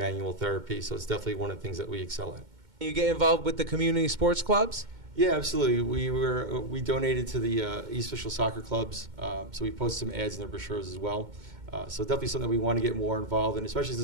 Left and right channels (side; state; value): left; late; 2.2 ms